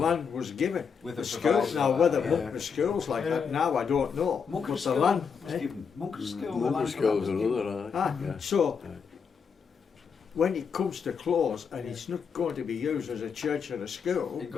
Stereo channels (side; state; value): right; quieter; 6.3 dB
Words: was given. With the a schools now, whether yeah. Monk schools like that now, I don't know. Monk but the school land was given. Monk school, Monk school's another. So when it comes to close and it's not going to be used as a church or a school, it